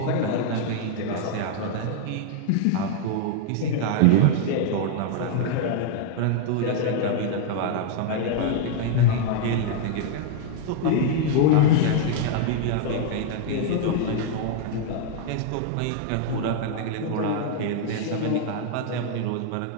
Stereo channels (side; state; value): both; different; correlation 0.00